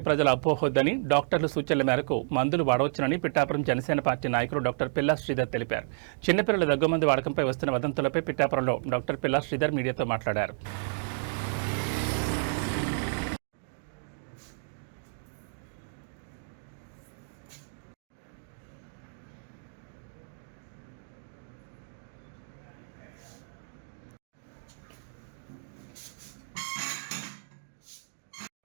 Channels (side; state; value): left; silent; digital silence